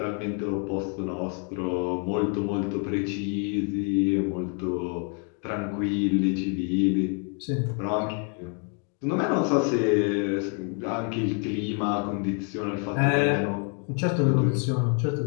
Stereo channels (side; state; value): right; quieter; 39.3 dB